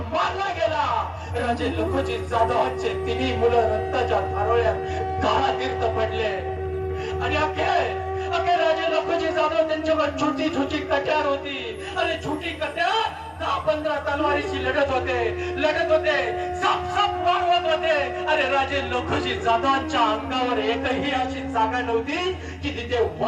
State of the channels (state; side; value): identical; both; correlation 1.00